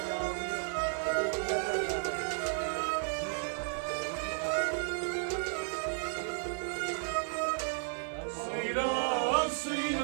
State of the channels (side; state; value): left; silent; digital silence